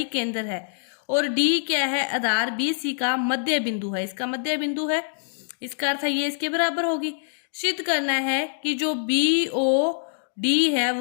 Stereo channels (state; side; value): silent; right; digital silence